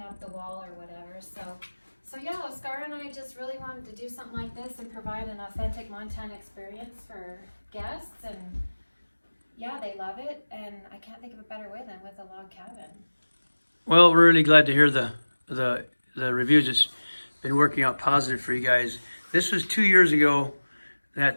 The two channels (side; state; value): both; inverted; correlation -1.00